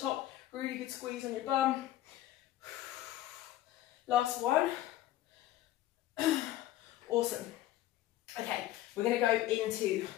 really good squeeze on your bum. Last one. Awesome. Okay, we're going to go into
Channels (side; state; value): right; quieter; 14.2 dB